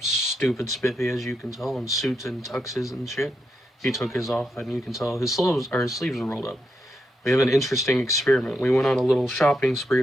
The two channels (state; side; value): normal; both; correlation 0.83